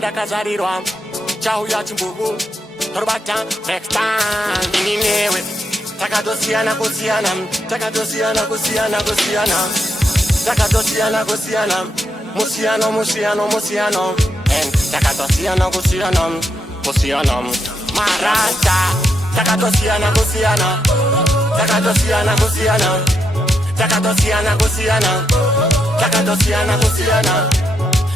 kazarirwa Chau ya chimbugu Torbata next time Ininewe Takadosiana kusiana Takadosiana kusiana kusiana Takadosiana kusiana Musiano musiano musiano And takadosiana kusiana Kusiana Marasta Takadosiana kusiana Takadosiana kusiana Takadosiana kusiana Takadosiana kusiana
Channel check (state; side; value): normal; both; correlation 0.81